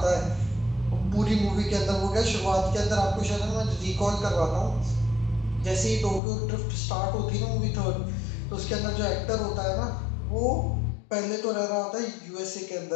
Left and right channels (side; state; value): right; drops out; at 6.2 s